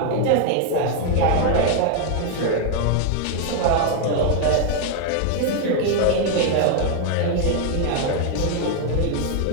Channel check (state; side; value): different; both; correlation 0.00